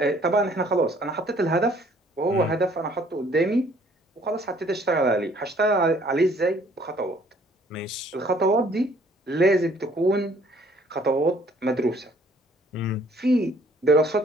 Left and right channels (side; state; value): both; normal; correlation 0.60